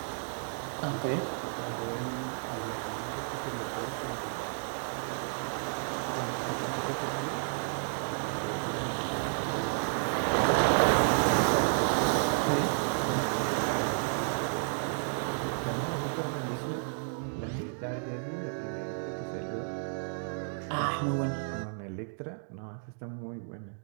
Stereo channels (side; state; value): left; silent; digital silence